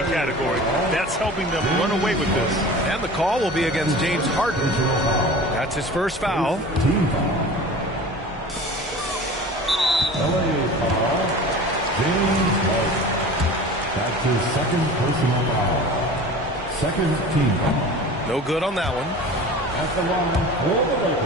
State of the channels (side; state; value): both; normal; correlation 0.38